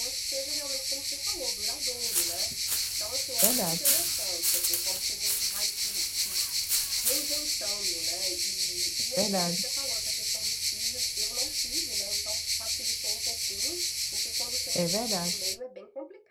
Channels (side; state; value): both; identical; correlation 1.00